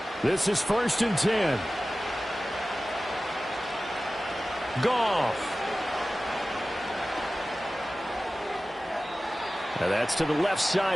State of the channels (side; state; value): both; normal; correlation 0.96